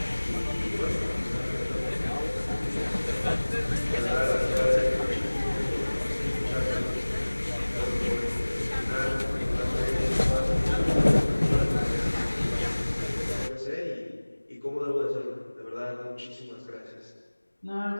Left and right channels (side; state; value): both; inverted; correlation -1.00